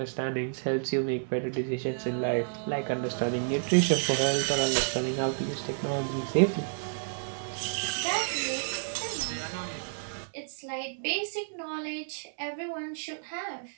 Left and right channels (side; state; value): left; silent; 58 dB below the other